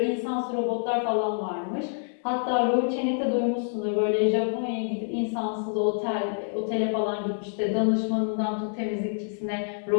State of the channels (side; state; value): right; silent; digital silence